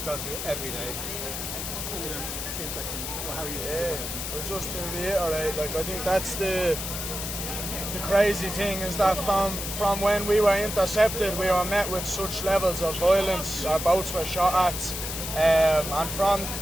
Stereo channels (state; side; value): noise; left; hiss, 5 dB below the sound